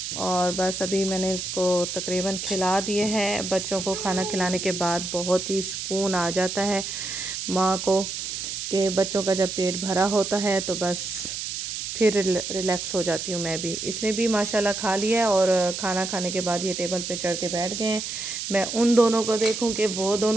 और बस अभी मैंने इसको तकरीबन खिला दिए हैं। बच्चों को खाना खिलाने के बाद बहुत ही सुकून आ जाता है माँ को, कि बच्चों का जब पेट भरा होता है तो बस फिर रिलैक्स हो जाती हूँ मैं भी। इसने भी माशाल्लाह खा लिया है, और खाना खाने के बाद ये टेबल पे चढ़ के बैठ गए हैं। मैं उन दोनों को देखूँ कि वो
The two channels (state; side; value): noise; right; hiss, 5 dB below the sound